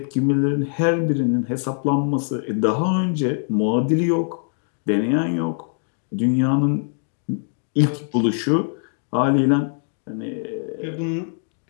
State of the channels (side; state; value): right; silent; digital silence